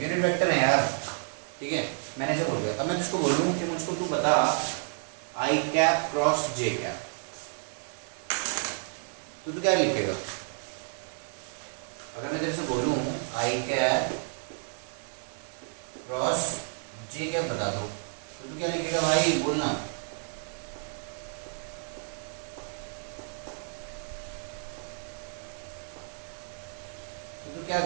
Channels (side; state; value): left; silent; 57 dB below the other